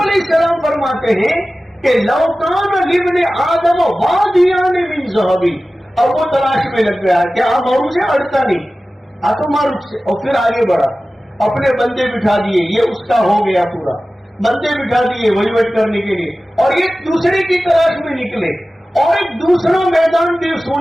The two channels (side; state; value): both; normal; correlation 0.96